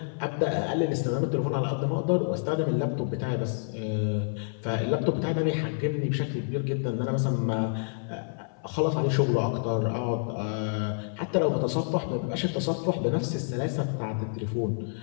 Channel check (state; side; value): silent; right; 59 dB below the other